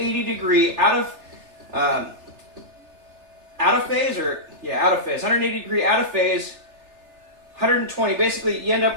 degree out of phase, 180 degree out of phase, 120. Basically, you end up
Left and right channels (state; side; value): late; left; 3.4 ms